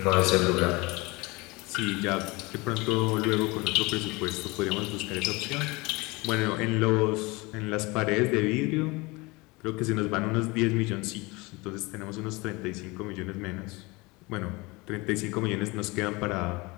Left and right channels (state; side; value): quieter; right; 24.4 dB